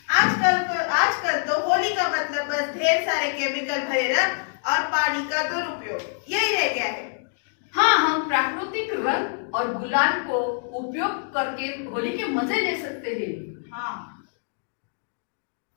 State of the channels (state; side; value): silent; right; digital silence